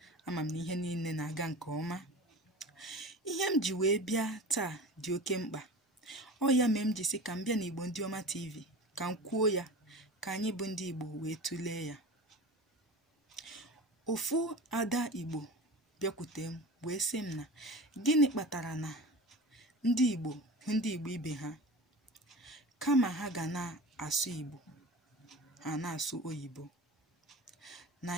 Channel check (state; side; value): normal; both; correlation 0.34